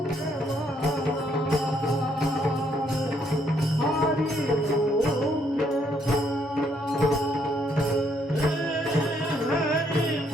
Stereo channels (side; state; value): both; normal; correlation 0.71